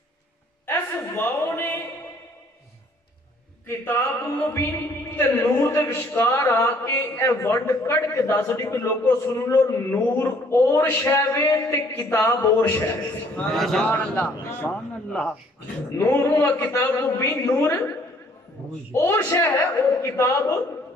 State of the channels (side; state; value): both; normal; correlation 0.61